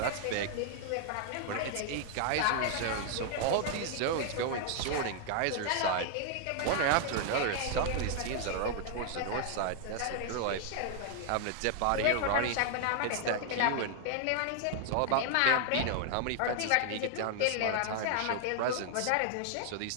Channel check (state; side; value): different; both; correlation 0.00